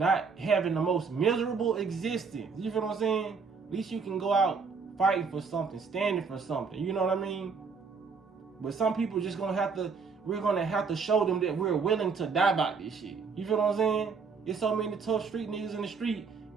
having the most miserable existence. You feel what I'm saying? At least you can go out fighting for something, standing for something. You know what I mean? But some people just gonna have to we're gonna have to show them that we're willing to die about this shit. You feel what I'm saying? There's so many tough street niggas in the street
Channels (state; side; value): quieter; left; 5.3 dB